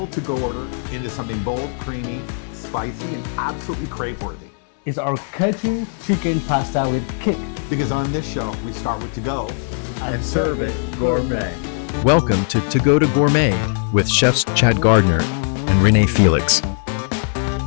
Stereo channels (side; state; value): right; silent; 66 dB below the other